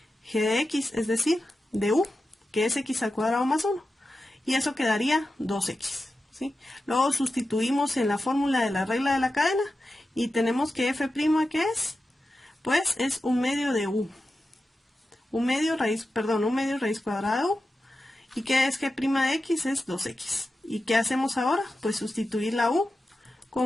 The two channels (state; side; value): normal; both; correlation 0.92